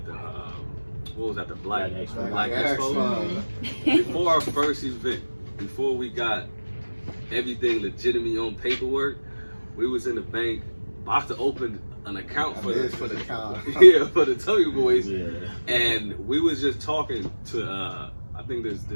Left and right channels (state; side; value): inverted; both; correlation -1.00